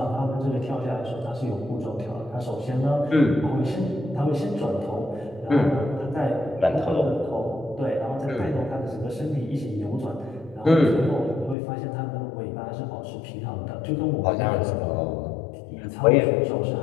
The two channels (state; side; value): drops out; right; at 11.6 s